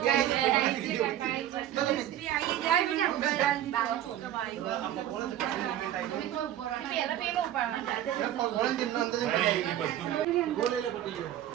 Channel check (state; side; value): quieter; left; 12.1 dB